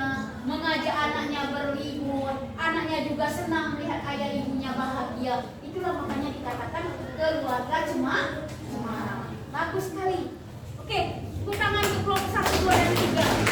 mengajak anaknya berlibur. Anaknya juga senang melihat ayah ibunya bahagia. Itulah makanya dikatakan keluarga cemara. Bagus sekali. Oke, tepuk tangan untuk kelompok 1, 2, dan 3.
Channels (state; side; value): identical; both; correlation 1.00